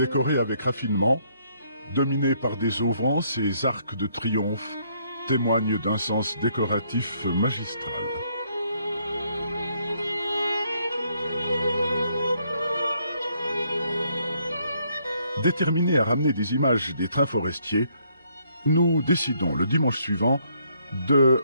avec raffinement, dominé par des auvents, ces arcs de triomphe témoignent d'un sens décoratif magistral. Déterminés à ramener des images des trains forestiers, nous décidons le dimanche suivant de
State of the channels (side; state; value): both; inverted; correlation -0.70